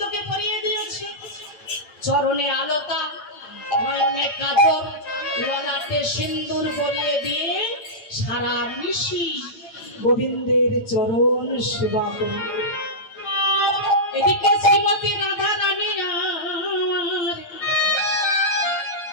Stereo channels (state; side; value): late; right; 8.8 ms